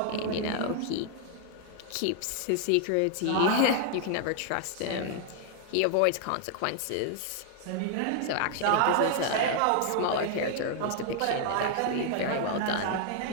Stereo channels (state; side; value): different; both; correlation 0.00